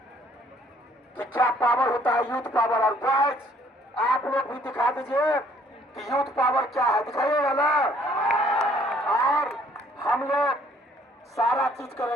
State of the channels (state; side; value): normal; both; correlation 0.61